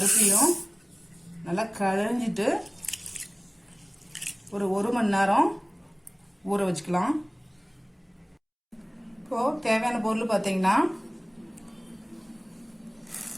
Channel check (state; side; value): identical; both; correlation 1.00